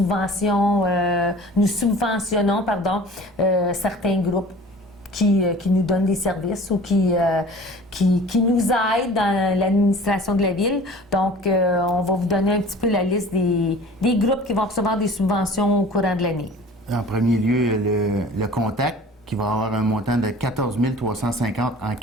certains groupes qui nous donnent des services ou qui nous aident dans l'administration de la Ville. Donc, on va vous donner un petit peu la liste des groupes qui vont recevoir des subventions au courant de l'année. En premier lieu, le Contact, qui va avoir un montant de 14 350 en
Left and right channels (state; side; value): normal; both; correlation 0.44